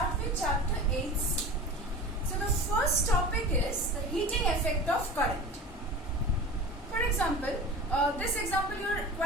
with chapter 8. So the first topic is the heating effect of current. For example, this example you are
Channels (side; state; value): both; normal; correlation 0.35